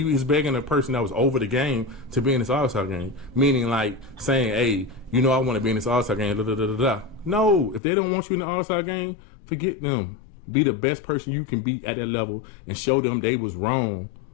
was begging a person that was over the game to be in this All-Star game, meaning like saying, "Hey, you know, I want to be in this All-Star game." Da, da, da, da, da. No, if they don't want you in the All-Star game, forget them. Be the best person you can be at that level, and show them they was wrong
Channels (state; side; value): drops out; right; at 7.8 s